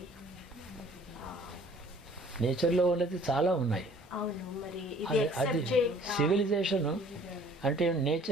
నేచర్లో ఉన్నది చాలా ఉన్నాయి. అవును, మరి అది సివిలైజేషన్ అంటే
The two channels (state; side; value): normal; both; correlation 0.54